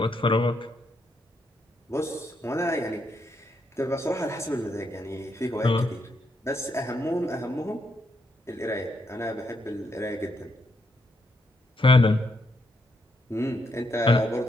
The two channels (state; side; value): normal; both; correlation 0.78